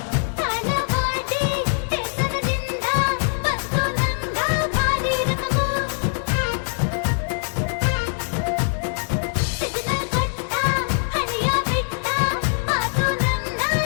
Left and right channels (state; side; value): silent; right; digital silence